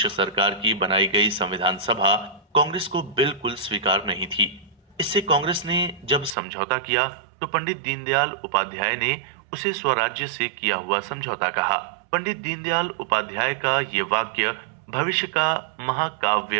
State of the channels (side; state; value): left; drops out; at 6.4 s